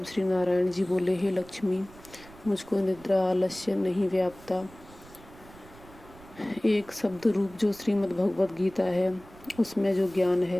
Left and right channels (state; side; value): noise; right; rumble, 21 dB below the sound